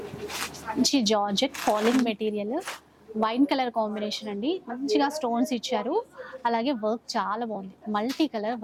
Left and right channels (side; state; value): both; identical; correlation 1.00